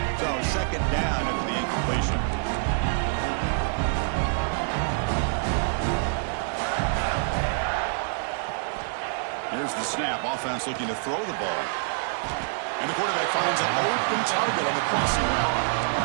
Second down after the incompletion. Here's the snap. Offense looking to throw the ball. And the quarterback finds an open target on the crossing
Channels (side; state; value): left; silent; digital silence